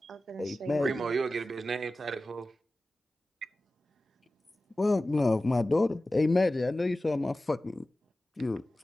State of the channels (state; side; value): normal; both; correlation 0.95